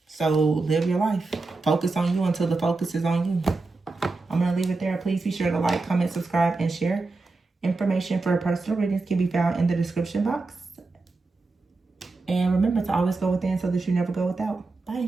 So live your life. Focus on you until the focus is on you. I'm going to leave it there. Please be sure to like, comment, subscribe, and share. Information for personal readings can be found in the description box. And remember to always go within so that you never go without.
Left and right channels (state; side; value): quieter; left; 3.6 dB